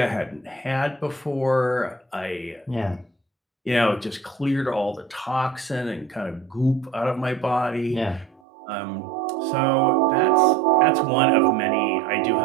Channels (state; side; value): drops out; left; at 8.4 s